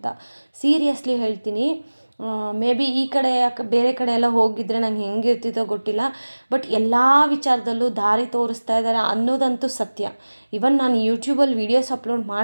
ಸೀರಿಯಸ್ಲಿ ಹೇಳ್ತೀನಿ, ಮೇ ಬಿ ಈ ಕಡೆ ಬೇರೆ ಕಡೆ ಎಲ್ಲ ಹೋಗಿದ್ರೆ ನಂಗೆ ಹೆಂಗಿರ್ತಿತ್ತೋ ಗೊತ್ತಿಲ್ಲ. ಬಟ್ ಎಲ್ಲ ವಿಚಾರದಲ್ಲೂ ದಾರಿ ತೋರಿಸ್ತಾ ಇದ್ದಾರೆ ಅನ್ನೋದಂತೂ ಸತ್ಯ. ಇವನ್ ನಾನು ಯೂಟ್ಯೂಬಲ್ಲಿ ವೀಡಿಯೋಸ್ ಅಪ್ಲೋಡ್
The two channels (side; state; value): both; inverted; correlation -1.00